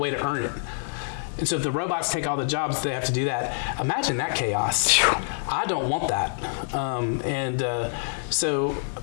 to earn it. And so if the robots take all the jobs, they have to do that. Imagine that chaos. I don't want that. So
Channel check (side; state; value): right; silent; digital silence